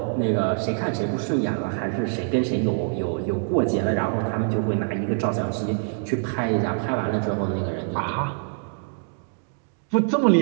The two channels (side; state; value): left; silent; digital silence